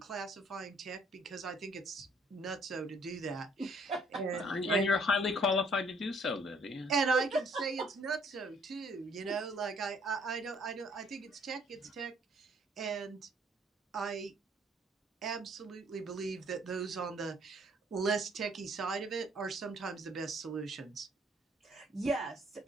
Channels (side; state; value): both; normal; correlation 0.62